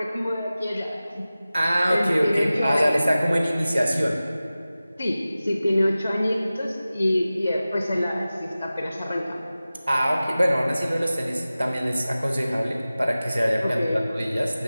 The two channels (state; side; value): inverted; both; correlation -0.96